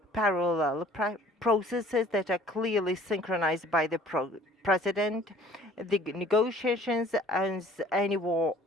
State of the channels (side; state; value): both; normal; correlation 0.53